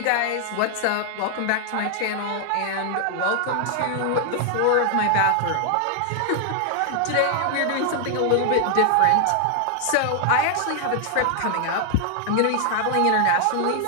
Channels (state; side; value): different; both; correlation 0.00